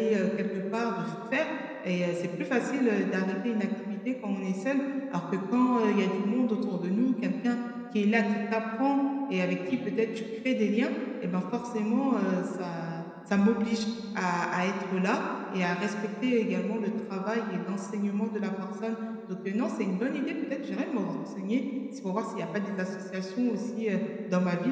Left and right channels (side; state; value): both; identical; correlation 1.00